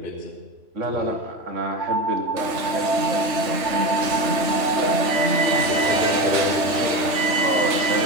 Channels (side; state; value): left; late; 3.3 ms